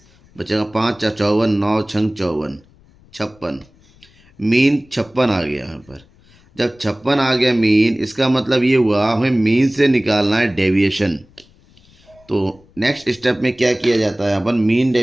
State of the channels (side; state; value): left; noise; rumble, 29 dB below the sound